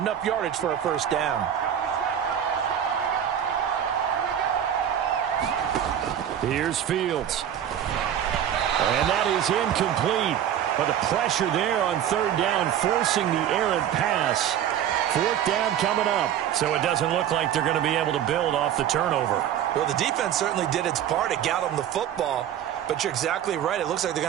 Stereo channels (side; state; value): left; quieter; 10.0 dB